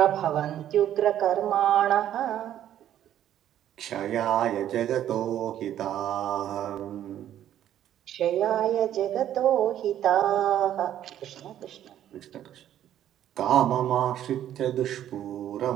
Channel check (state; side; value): quieter; left; 11.3 dB